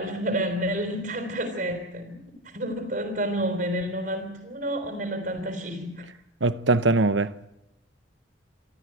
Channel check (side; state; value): both; normal; correlation 0.13